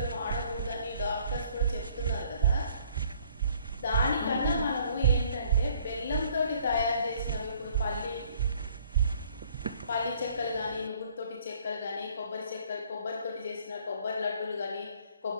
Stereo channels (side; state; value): both; inverted; correlation -0.60